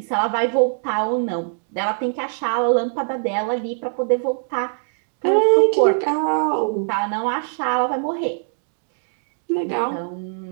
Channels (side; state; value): left; silent; digital silence